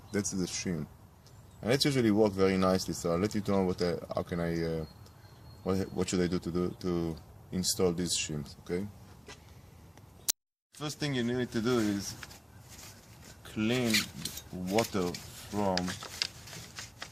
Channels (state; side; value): identical; both; correlation 1.00